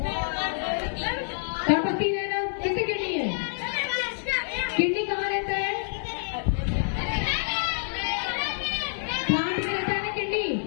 गणपति है ना, किसकी किडनी है? किडनी कहाँ रहता है? प्लांट में रहता है ना किडनी।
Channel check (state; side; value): silent; right; digital silence